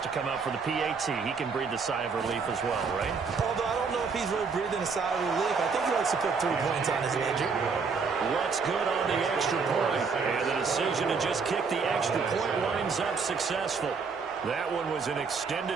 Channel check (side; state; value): left; quieter; 5.1 dB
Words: to come out for the PAT. He can breathe the sigh of relief as well, right? Although I don't know if he's really breathing a sigh of relief. I think he likes to put 3 points on his ledger. What's good on the extra point? And the decision to just kick the extra point winds up successful. That one was an